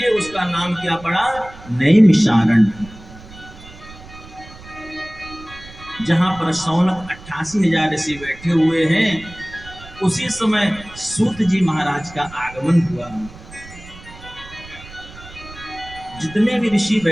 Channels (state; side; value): noise; right; rumble, 18 dB below the sound